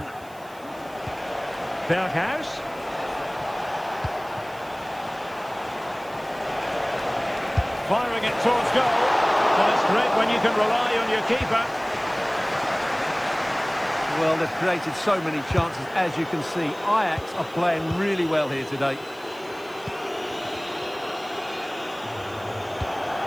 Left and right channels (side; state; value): right; noise; hiss, 24 dB below the sound